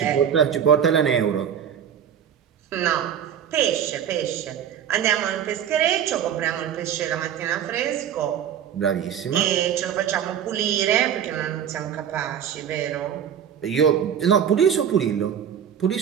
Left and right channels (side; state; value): left; quieter; 8.9 dB